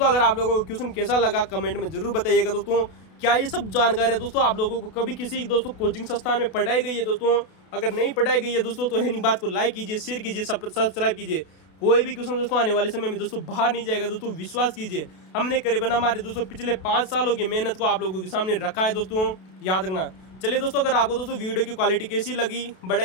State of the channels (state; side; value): late; right; 32 ms